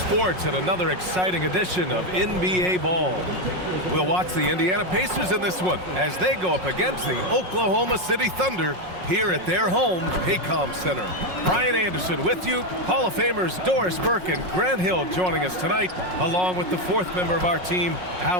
and another exciting edition of NBA Ball. We'll watch the Indiana Pacers in this one as they go up against the Oklahoma City Thunder here at their home, Paycom Center. Brian Anderson with you. Hall of Famers Doris Burke and Grant Hill joining us tonight, along with the fourth member of our team,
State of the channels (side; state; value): left; late; 5.5 ms